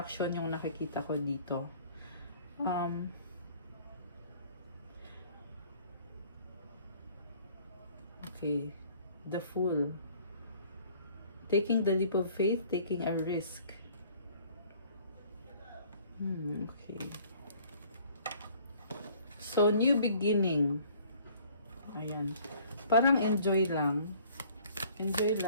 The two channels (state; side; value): inverted; both; correlation -0.55